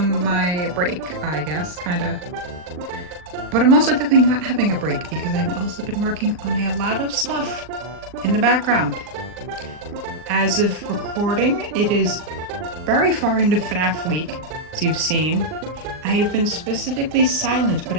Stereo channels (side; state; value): left; late; 39 ms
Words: my break, I guess, kinda. But I'm also definitely not having a break because I've also been working on a lot of stuff in the background. As of recording, it is very far into Fnaf week, as you've seen. I have been specifically silent, but